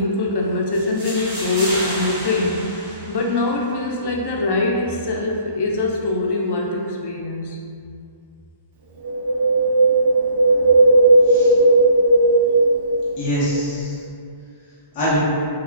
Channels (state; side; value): inverted; both; correlation -0.57